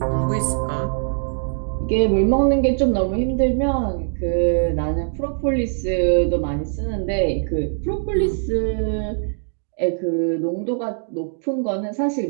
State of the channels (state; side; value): silent; left; digital silence